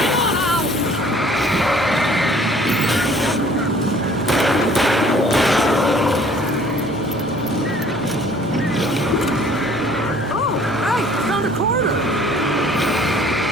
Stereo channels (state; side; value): normal; both; correlation 0.55